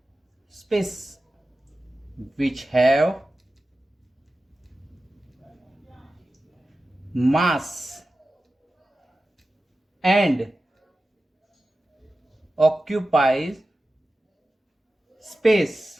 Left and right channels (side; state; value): both; normal; correlation 0.94